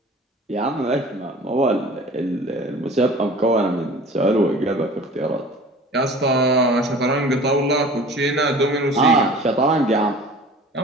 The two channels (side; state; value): both; normal; correlation 0.44